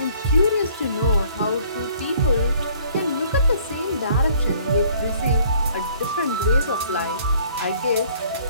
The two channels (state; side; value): inverted; both; correlation -0.58